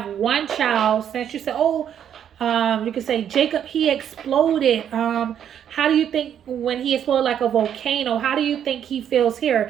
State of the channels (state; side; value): quieter; left; 9.3 dB